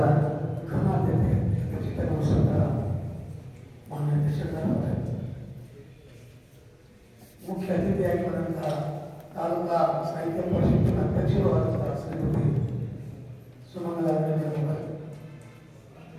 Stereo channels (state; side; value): identical; both; correlation 1.00